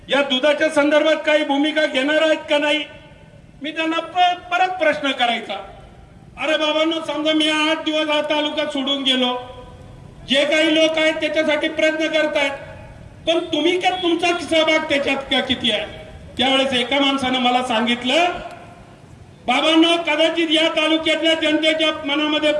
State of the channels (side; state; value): both; identical; correlation 1.00